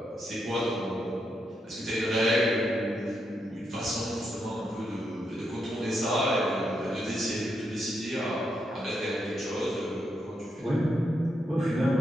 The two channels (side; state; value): both; normal; correlation 0.81